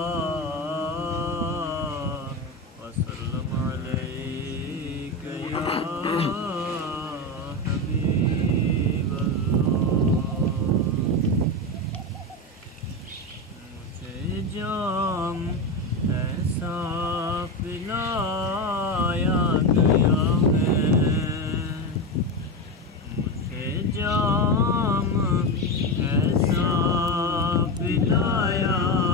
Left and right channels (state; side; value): normal; both; correlation 0.16